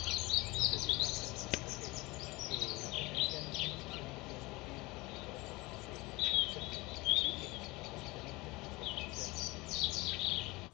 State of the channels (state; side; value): quieter; right; 22.6 dB